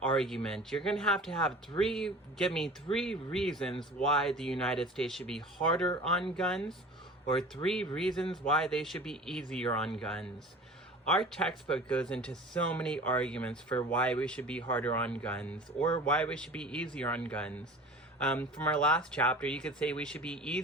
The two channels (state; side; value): normal; both; correlation 0.40